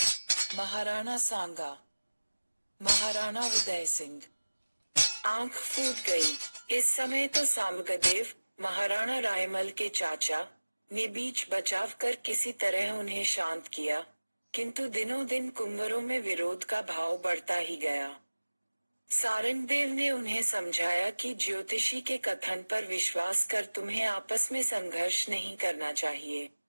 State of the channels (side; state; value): both; inverted; correlation -1.00